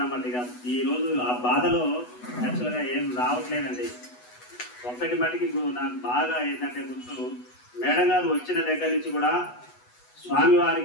అన్నమాట. ఇక ఈరోజు ఆ బాధలో యాక్చువల్గా ఏం రావట్లేదండి. ఒక్కటి మటుకి నాకు బాగా ఏంటంటే గుర్తు, మేడం గారు వచ్చిన దగ్గర నుంచి కూడా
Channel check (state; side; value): late; right; 8.1 ms